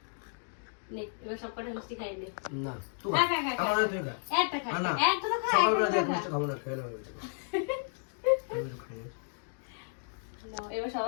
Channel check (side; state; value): right; silent; digital silence